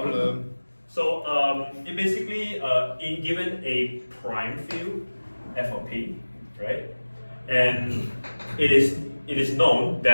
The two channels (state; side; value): inverted; both; correlation -1.00